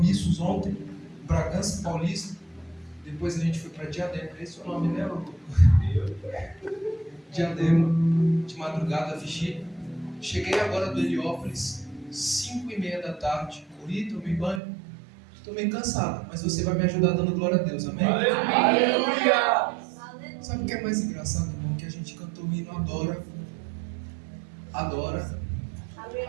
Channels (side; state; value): left; drops out; at 14.6 s